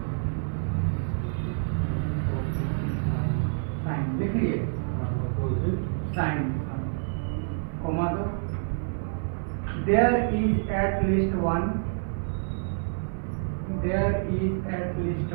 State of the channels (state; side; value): silent; left; 60 dB below the other